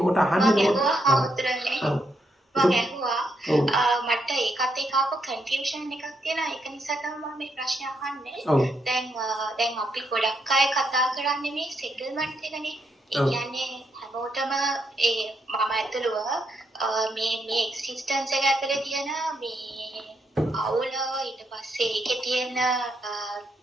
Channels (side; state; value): both; normal; correlation 0.78